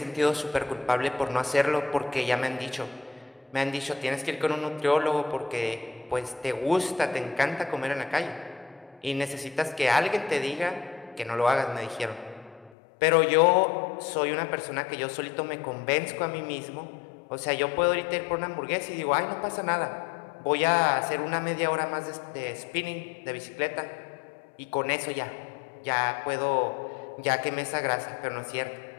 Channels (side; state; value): right; drops out; at 12.7 s